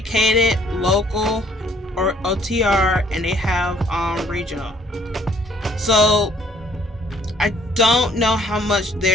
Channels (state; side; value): normal; both; correlation 0.62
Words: local, or OTR, and they have regional. So I don't know how much